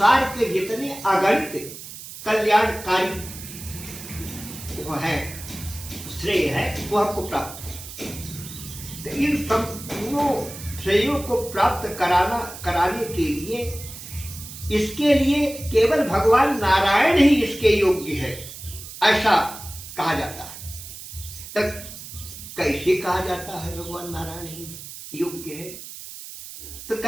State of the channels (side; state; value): right; noise; hiss, 13 dB below the sound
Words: के जितने अगणित कल्याणकारी वो है, श्रेय है, वो हमको प्राप्त हो। तो इन संपूर्ण श्रेयों को प्राप्त कराने के लिए, इसके लिए केवल भगवान नारायण ही इसके योग्य है, ऐसा कहा जाता है। तब कैसे कहा जाता है भगवान नारायण ही योग्य है? तो